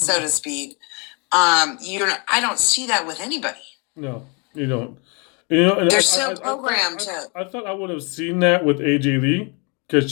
to speak. I don't see that with anybody. No, you don't. You know, and they're so programmed. I thought I would have seen that with AJ Lee because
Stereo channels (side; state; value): right; quieter; 32.8 dB